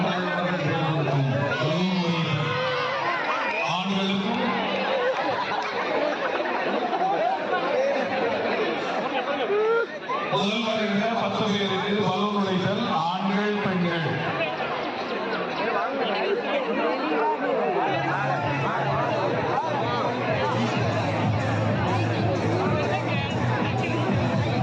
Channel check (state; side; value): identical; both; correlation 1.00